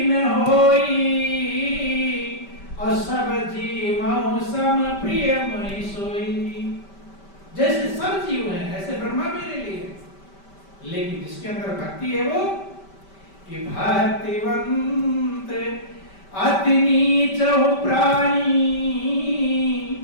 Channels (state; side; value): late; right; 5.1 ms